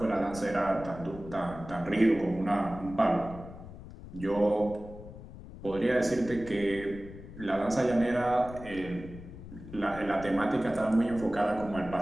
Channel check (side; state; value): left; noise; rumble, 14 dB below the sound